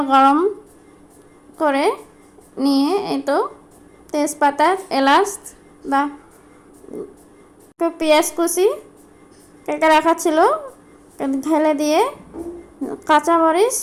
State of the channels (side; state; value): both; identical; correlation 1.00